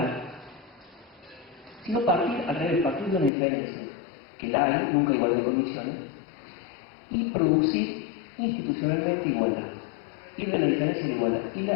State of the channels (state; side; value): drops out; right; at 3.3 s